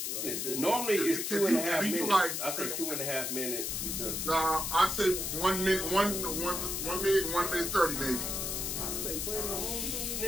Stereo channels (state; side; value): noise; left; hiss, 2 dB below the sound